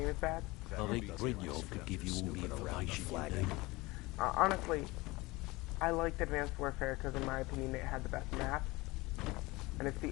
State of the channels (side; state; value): right; quieter; 22.1 dB